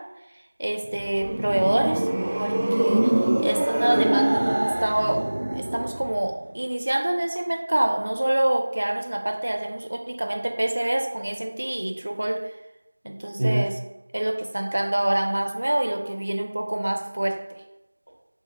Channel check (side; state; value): both; inverted; correlation -1.00